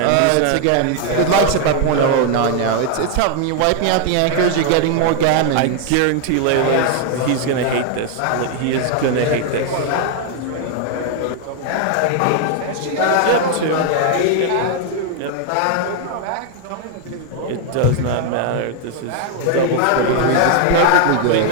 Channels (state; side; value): different; both; correlation 0.00